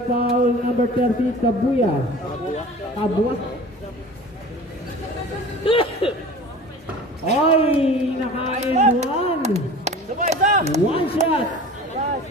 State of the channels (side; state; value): both; normal; correlation 0.40